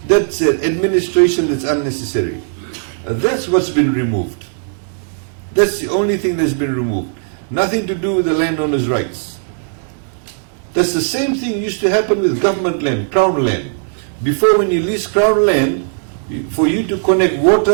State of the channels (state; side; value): silent; left; 68 dB below the other